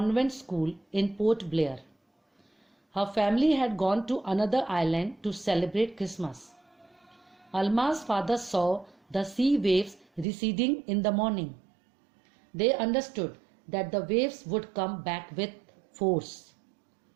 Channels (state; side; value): drops out; left; at 10.2 s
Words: school in Port Blair. Her family had gone to another island to celebrate Christmas. Alma's father saw the sea waves receding in the morning. They understood that the waves would come back with force.